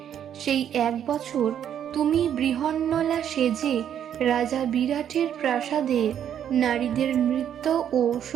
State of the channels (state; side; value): quieter; left; 9.5 dB